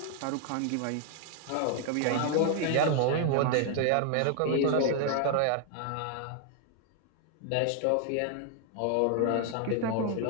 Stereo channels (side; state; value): both; different; correlation 0.00